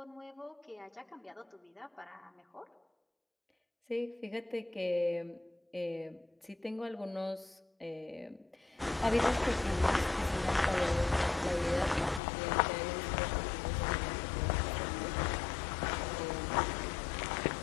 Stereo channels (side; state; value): right; drops out; at 12.2 s